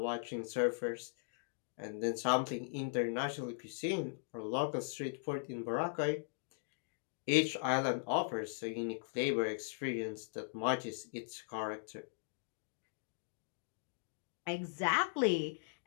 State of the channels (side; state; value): right; silent; digital silence